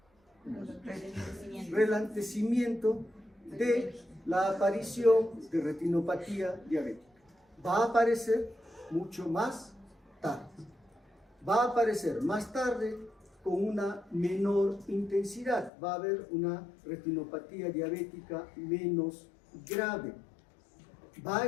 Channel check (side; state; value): right; drops out; at 15.7 s